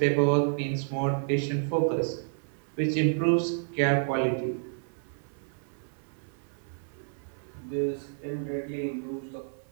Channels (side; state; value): left; silent; 58 dB below the other